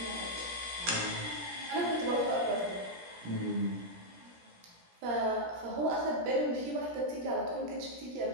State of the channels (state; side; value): late; left; 17 ms